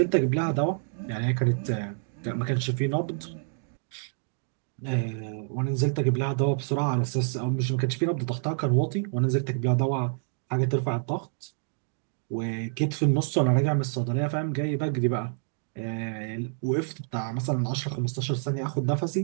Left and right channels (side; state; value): left; silent; digital silence